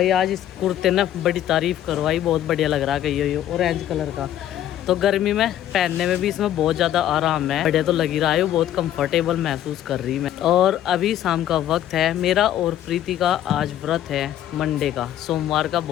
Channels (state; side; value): quieter; right; 11.8 dB